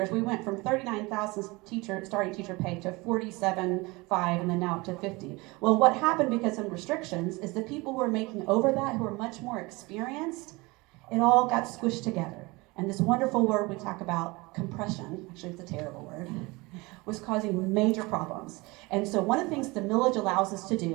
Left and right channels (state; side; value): quieter; left; 24.1 dB